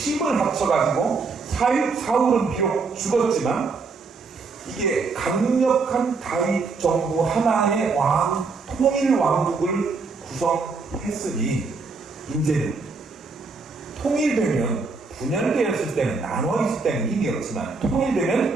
합쳐가지고 사울은 비록 죽었지만 이게 강력한 다윗 정부 하나의 통일 왕국을 구성했으니 이제는 통일되면 분열되었을 때는 나눠있을 때는 힘이 없지만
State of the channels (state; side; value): quieter; left; 4.4 dB